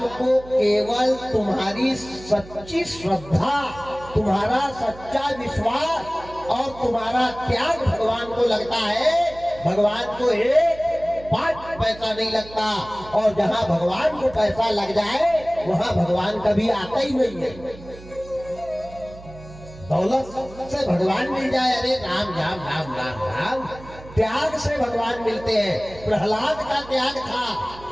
को केवल तुम्हारी सच्ची श्रद्धा, तुम्हारा सच्चा विश्वास और तुम्हारा त्याग भगवान को लगता है। भगवान को 1 पैसा नहीं लगता। और जहां भगवान को पैसा लग जाए वहां भगवान कभी आता ही नहीं है। दौलत से भगवान मिल जाए, अरे राम राम राम राम राम। त्याग से भगवान मिलते हैं। प्रहलाद का त्याग था,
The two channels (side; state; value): right; noise; hum, 18 dB below the sound